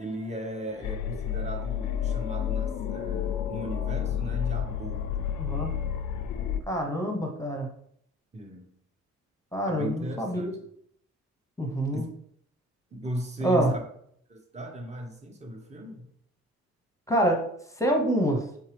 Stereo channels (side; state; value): both; normal; correlation 0.44